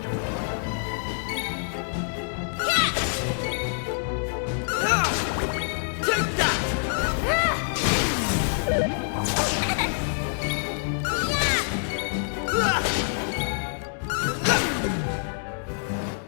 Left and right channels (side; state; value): right; silent; digital silence